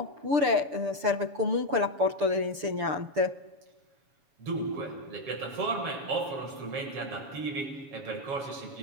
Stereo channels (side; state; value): left; late; 6.9 ms